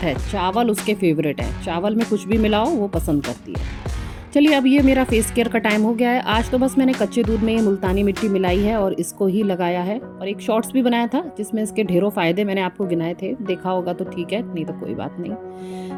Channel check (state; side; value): identical; both; correlation 1.00